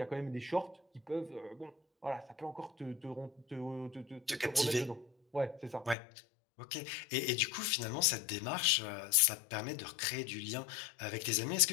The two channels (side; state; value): right; drops out; at 6.0 s